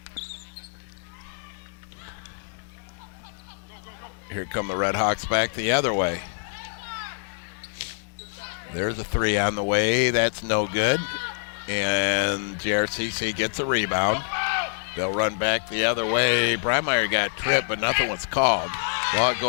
Here come the Red Hawks back the other way. There's a three on the way. That's no good. And JRCC gets a rebound. They'll run back the other way. Breimeyer got tripped, but nothing was called. Well, it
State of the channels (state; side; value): silent; right; digital silence